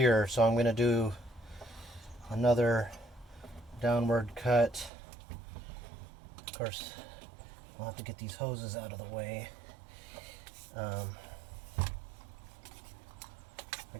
so I'm going to do another downward cut. Of course, I'll have to get these hoses out of the way. I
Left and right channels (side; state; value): left; drops out; at 4.9 s